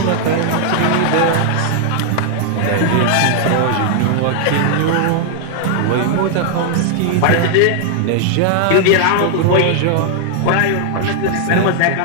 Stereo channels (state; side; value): different; both; correlation -0.01